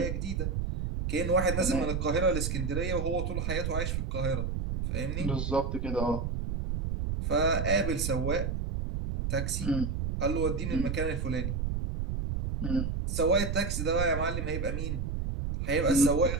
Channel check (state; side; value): noise; right; rumble, 1 dB below the sound